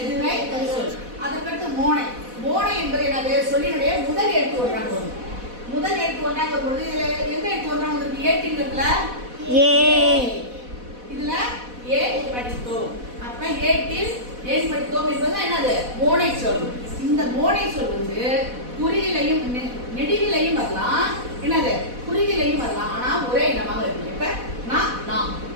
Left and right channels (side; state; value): left; late; 4.1 ms